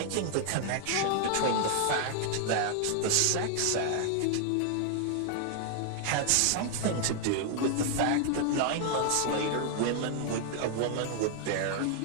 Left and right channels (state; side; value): different; both; correlation 0.00